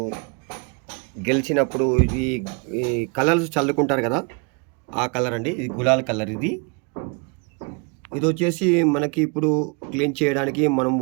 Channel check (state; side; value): quieter; left; 32.8 dB